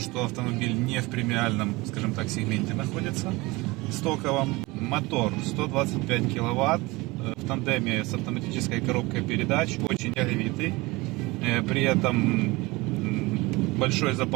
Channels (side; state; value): left; quieter; 22.7 dB